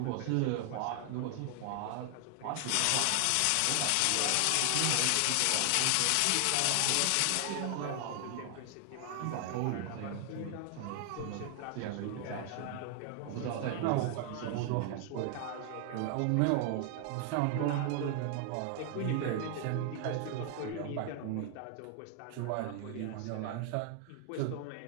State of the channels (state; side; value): different; both; correlation 0.00